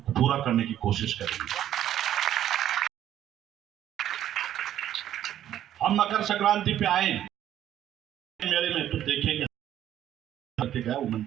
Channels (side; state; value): left; quieter; 11.5 dB